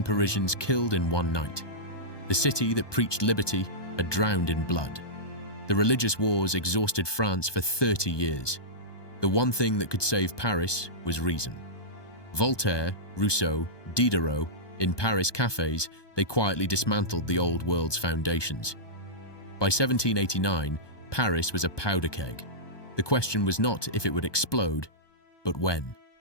Parisians killed in one night. The city that preached liberty had drowned in blood. The religious wars exhausted France for 30 years. The one thing that could save Paris was reason. Voltaire, Rousseau, Diderot, in Paris cafes, they quietly dismantled the old world's foundations. By 1789, Paris was a powder keg. The question was not if it would explode, but when.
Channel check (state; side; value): late; right; 1.2 ms